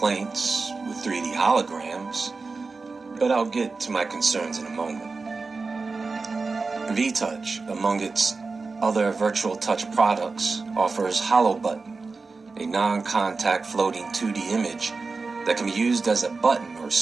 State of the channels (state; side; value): quieter; left; 4.1 dB